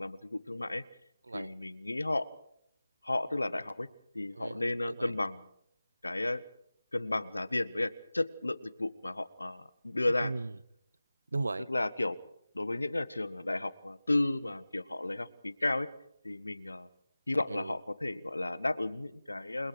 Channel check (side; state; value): both; inverted; correlation -0.98